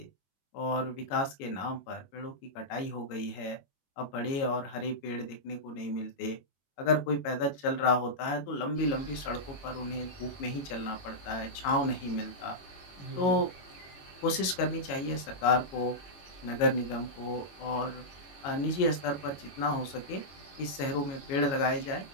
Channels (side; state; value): right; late; 21 ms